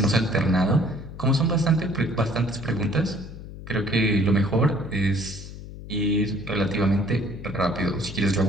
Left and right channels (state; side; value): noise; left; hum, 13 dB below the sound